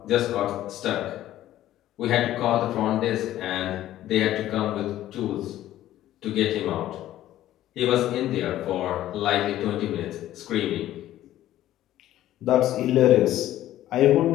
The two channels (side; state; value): right; quieter; 13.5 dB